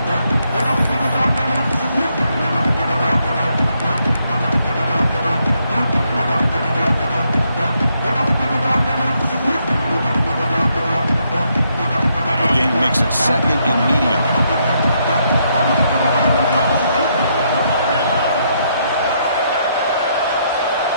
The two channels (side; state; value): both; inverted; correlation -0.76